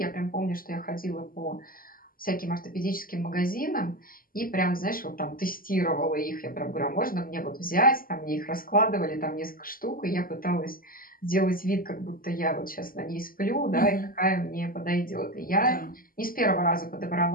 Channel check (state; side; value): late; right; 0.41 ms